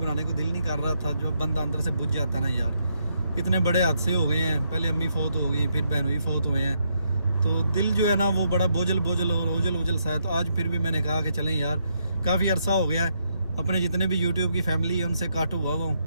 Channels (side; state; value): both; inverted; correlation -0.77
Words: को दिल नहीं कर रहा था। जो बंदा अंदर से बुझ जाता है ना यार, इतने बड़े हादसे हो गए हैं, पहले अम्मी फौत हो गई, फिर बहन भी फौत हुए हैं, तो दिल जो है ना वो बड़ा बोझल और ओझल सा है। तो आज फिर भी मैंने कहा कि चलें यार, काफ़ी अरसा हो गया है, अपने जितने भी यूट्यूब की फैमिली है उनसे काट हुआ हूँ,